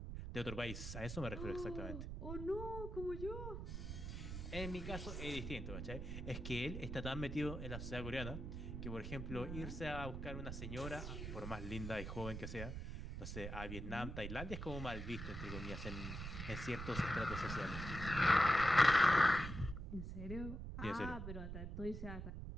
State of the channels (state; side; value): noise; right; rumble, 6 dB below the sound